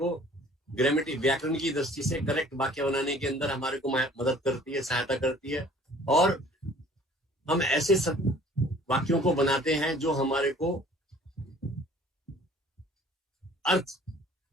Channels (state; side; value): normal; both; correlation 0.52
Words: ग्रामेटिक, व्याकरण की दृष्टि से करेक्ट वाक्य बनाने के अंदर हमारे को मदद करती है, सहायता करती है. और हम ऐसे सब वाक्यों को बनाते हैं जो हमारे को अर्थ